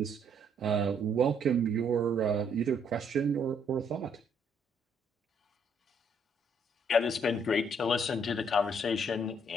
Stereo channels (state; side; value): normal; both; correlation 0.68